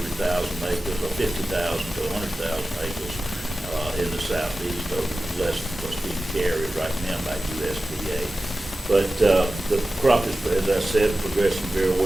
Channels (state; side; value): normal; both; correlation 0.95